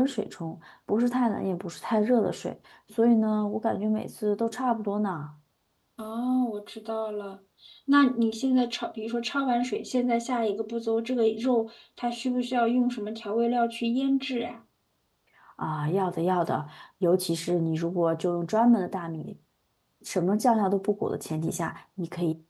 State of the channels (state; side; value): identical; both; correlation 1.00